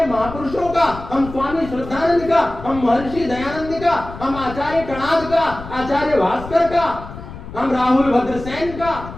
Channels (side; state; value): left; noise; rumble, 12 dB below the sound